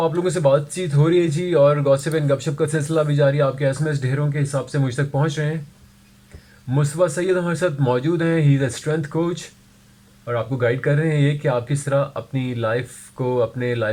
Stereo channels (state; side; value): identical; both; correlation 1.00